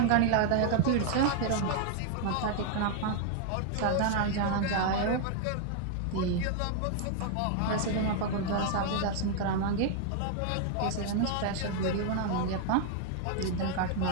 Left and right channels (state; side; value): different; both; correlation 0.00